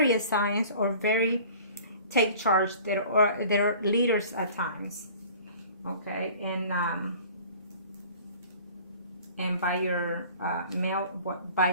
signs are very take charge. They're leaders at times. Okay, and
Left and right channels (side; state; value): both; inverted; correlation -0.46